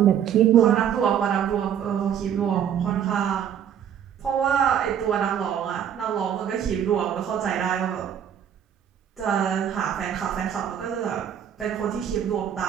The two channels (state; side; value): quieter; left; 9.2 dB